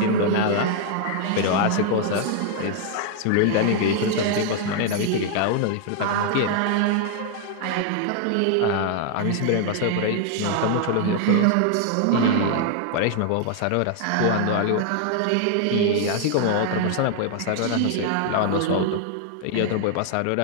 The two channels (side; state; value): both; different; correlation 0.00